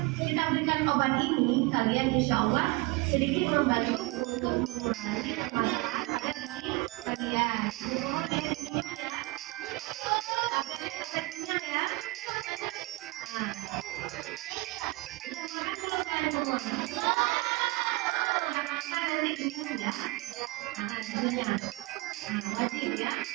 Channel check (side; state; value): left; quieter; 23.2 dB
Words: kita berikan obat ini, kalian insya Allah sedikit membantu untuk mengurangi masalah kalian.